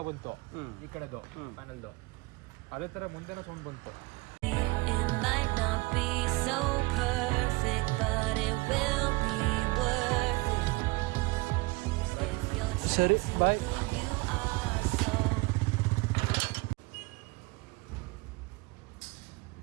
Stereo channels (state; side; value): quieter; left; 24.3 dB